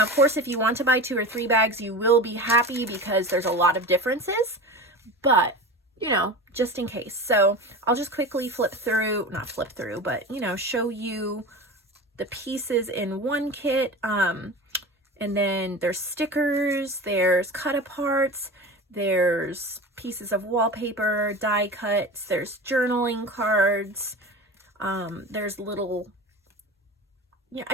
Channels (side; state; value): both; normal; correlation 0.31